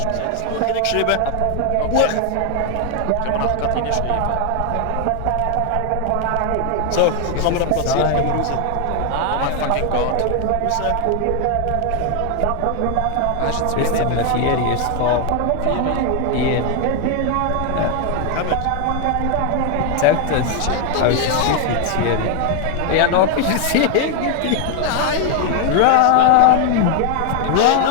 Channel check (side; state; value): both; different; correlation 0.01